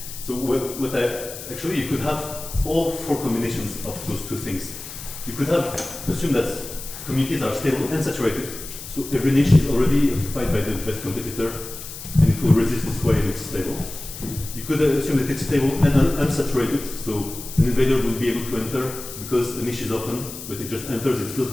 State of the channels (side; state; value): left; noise; hiss, 11 dB below the sound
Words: So you could have all four combinations of those two things. You could assume that communities are stable and saturated. So every niche is already occupied by the best competitor, and it will resist this way and it's stable. You could assume that it's stable and unsaturated, so an invader will be able to enter because the niche is open, but it just enters, it fills